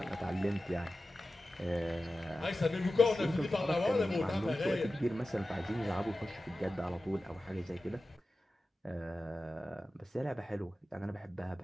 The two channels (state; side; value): normal; both; correlation 0.94